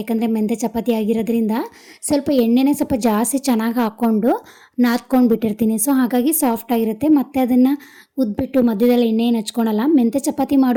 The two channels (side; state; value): both; identical; correlation 1.00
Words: ಯಾಕಂದರೆ ಮೆಂತ್ಯ ಚಪಾತಿ ಆಗಿರೋದ್ರಿಂದ ಸ್ವಲ್ಪ ಎಣ್ಣೆನೇ ಸ್ವಲ್ಪ ಜಾಸ್ತಿ ಚೆನ್ನಾಗಿ ಹಾಕ್ಕೊಂಡು ನಾದ್ಕೊಂಡು ಬಿಟ್ಟಿರ್ತೀನಿ. ಸೊ ಹಾಗಾಗಿ ಸಾಫ್ಟಾಗಿರುತ್ತೆ. ಮತ್ತು ಅದನ್ನು ಉದ್ಬಿಟ್ಟು ಮಧ್ಯದಲ್ಲಿ ಎಣ್ಣೆನ ಹಚ್ಕೊಳಲ್ಲ. ಮೆಂತ್ಯ ಚಪಾತಿ